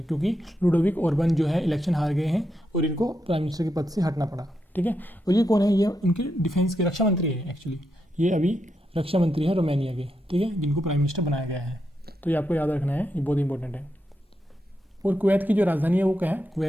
क्योंकि लुडोविक ओर्बन जो है इलेक्शन हार गए हैं और इनको प्राइम मिनिस्टर के पद से हटना पड़ा। ठीक है, और ये कौन है? ये इनके डिफेंस के रक्षा मंत्री है एक्चुअली। ये अभी रक्षा मंत्री हैं रोमानिया के। ठीक है, जिनको प्राइम मिनिस्टर बनाया गया है। तो ये आपको याद रखना है, ये बहुत इंपॉर्टेंट है। और कुवैत की जो राजधानी है वो क्या है?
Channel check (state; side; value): normal; both; correlation 0.84